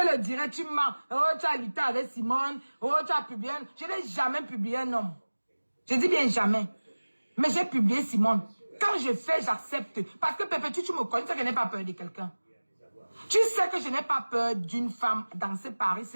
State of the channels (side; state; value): both; inverted; correlation -1.00